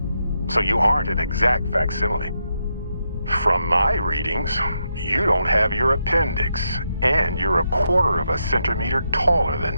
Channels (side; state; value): both; inverted; correlation -0.82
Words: so you aren't an exact facsimile. From my readings, you don't have your appendix, and you're a quarter of a centimeter taller